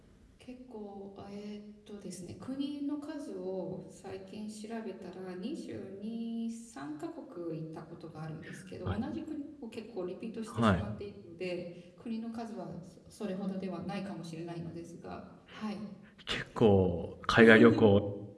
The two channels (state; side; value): identical; both; correlation 1.00